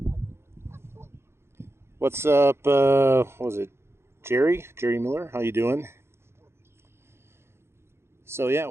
What's up? What was it? Jerry Miller? How you doing? So yeah,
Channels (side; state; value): left; late; 0.12 ms